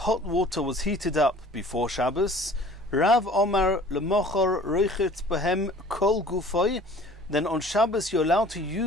water was heated up before Shabbos, Rav Omar lemochor roichet behem kol gufoy, then on Shabbos you're allowed to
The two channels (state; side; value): normal; both; correlation 0.49